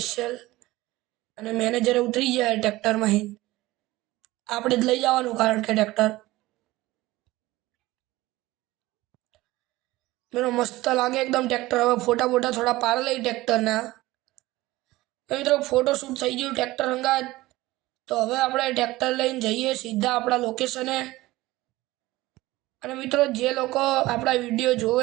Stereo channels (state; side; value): quieter; left; 18.5 dB